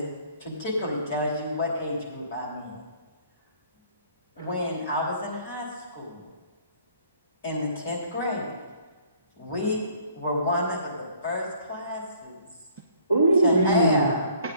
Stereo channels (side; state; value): both; inverted; correlation -0.58